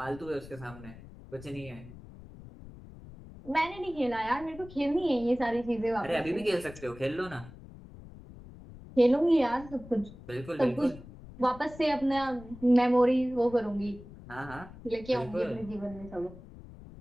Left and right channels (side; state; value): left; noise; rumble, 17 dB below the sound